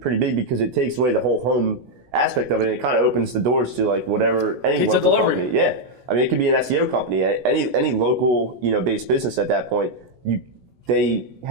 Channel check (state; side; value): late; left; 16 ms